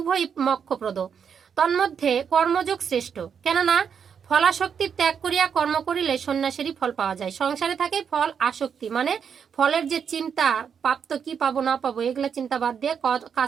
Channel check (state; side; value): quieter; left; 7.2 dB